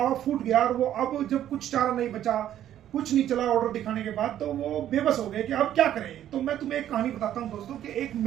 फूट गया। और वो अब जब कुछ चारा नहीं बचा, कुछ नहीं चला ऑर्डर दिखाने के बाद, तो वो बेबस हो गए कि अब क्या करें। तो मैं तुम्हें एक कहानी बताता हूँ दोस्तों कि एक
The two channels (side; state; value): left; quieter; 11.4 dB